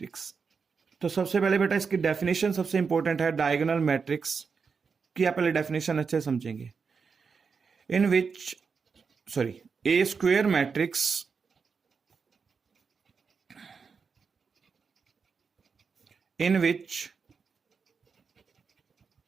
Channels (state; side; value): quieter; left; 5.5 dB